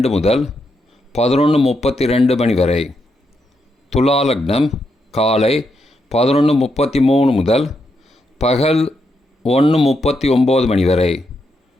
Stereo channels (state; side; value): normal; both; correlation 0.81